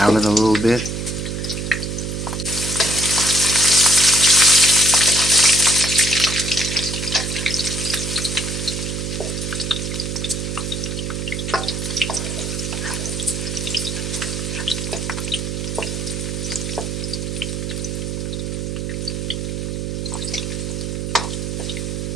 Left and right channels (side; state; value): right; noise; hum, 3 dB below the sound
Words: it a little bit.